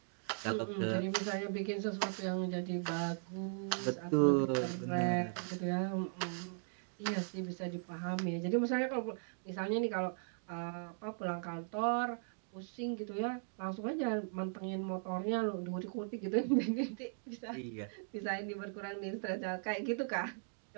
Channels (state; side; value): silent; left; digital silence